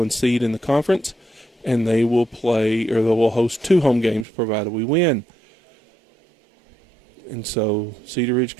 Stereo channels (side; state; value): left; drops out; at 4.2 s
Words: seed in the conference, and they will play, or they will host 2 home games provided we win. And so Cedar Ridge